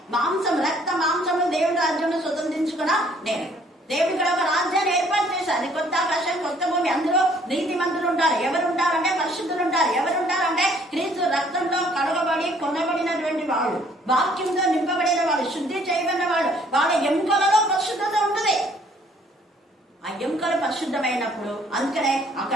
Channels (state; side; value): normal; both; correlation 0.61